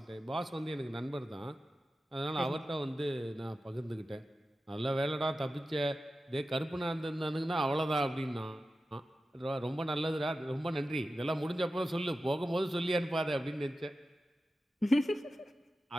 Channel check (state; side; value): normal; both; correlation 0.93